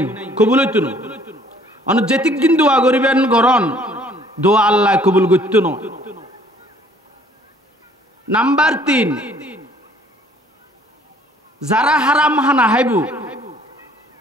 কবুল হইতো না। অনর যেতিক দিন দোয়া করিবেন গরন দোয়া আল্লাহ কবুল করতো না। নাম্বার 3 যারা হারাম হানা হাইবু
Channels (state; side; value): normal; both; correlation 0.58